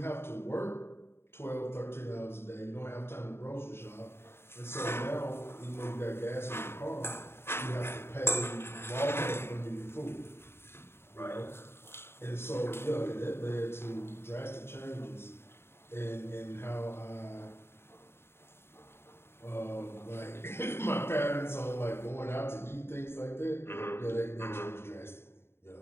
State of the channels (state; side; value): late; right; 0.12 ms